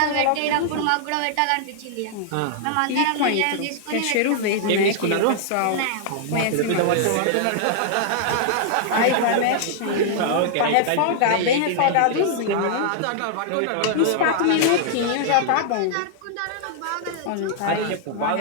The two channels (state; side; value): different; both; correlation -0.01